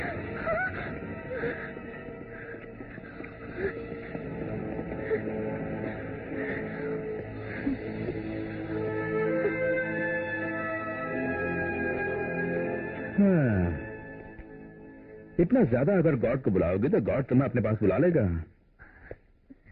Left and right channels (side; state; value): both; identical; correlation 1.00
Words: इतना ज्यादा अगर गॉड को बुलाओगे तो गॉड तुम्हें अपने पास बुला लेगा।